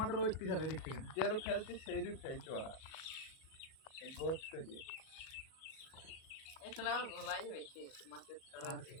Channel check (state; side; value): late; right; 38 ms